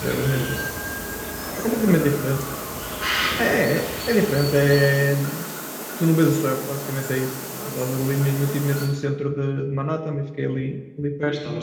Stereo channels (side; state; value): both; identical; correlation 1.00